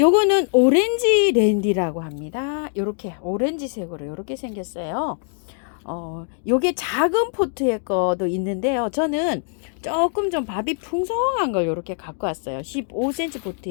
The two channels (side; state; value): right; silent; 57 dB below the other